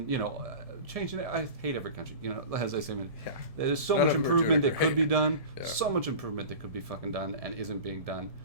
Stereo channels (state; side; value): late; left; 1.7 ms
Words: it. I hate every country, as I say. There's so much improvement that could be done, so much improvement that could be fucking done and isn't being done